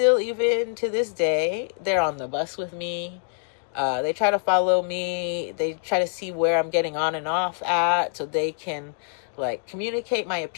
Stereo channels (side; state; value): right; silent; digital silence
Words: even to this day, they're on the bus with me. They try to follow me. They try to see where I'm getting on and off at so they can like communicate my